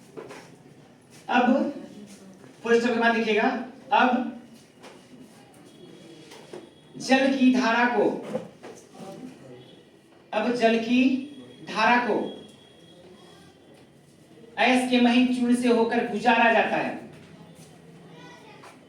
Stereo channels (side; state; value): both; identical; correlation 1.00